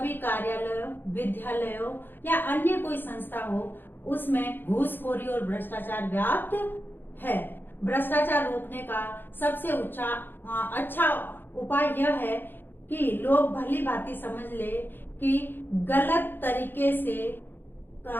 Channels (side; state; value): right; late; 0.096 ms